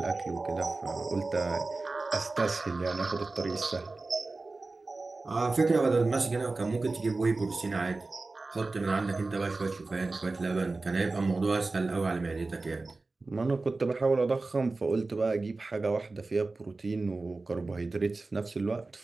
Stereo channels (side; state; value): left; quieter; 3.5 dB